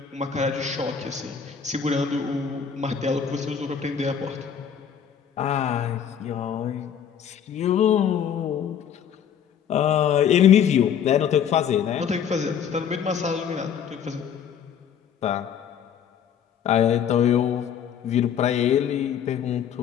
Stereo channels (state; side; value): quieter; right; 8.2 dB